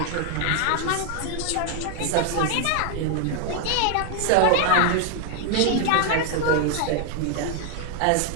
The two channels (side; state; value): both; different; correlation 0.00